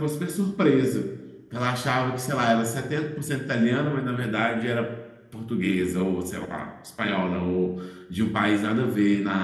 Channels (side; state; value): both; identical; correlation 1.00